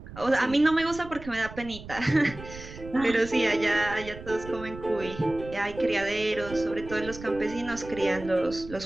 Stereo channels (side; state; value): right; noise; rumble, 14 dB below the sound